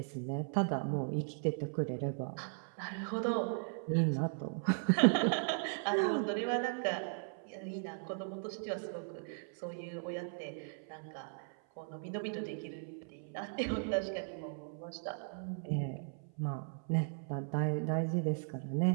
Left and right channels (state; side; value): silent; left; 53 dB below the other